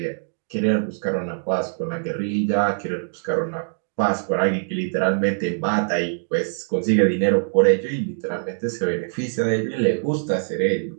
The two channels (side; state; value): left; silent; digital silence